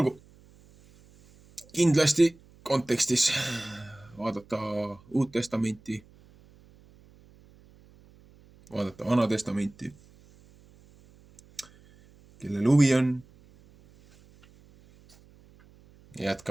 kindlasti kontekstis vaadata Uut Testamenti, vaadata Vana Testamenti, kellel huvi on.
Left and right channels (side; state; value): right; noise; hum, 27 dB below the sound